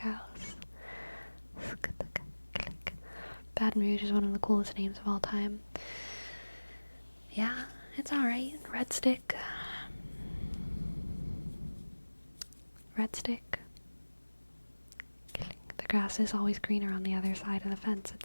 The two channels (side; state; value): both; inverted; correlation -1.00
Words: Baton Rouge is one of the coolest names of all time. Yeah, it's alright. Red stick. Red stick. The grass is always greener on the other side of the fence,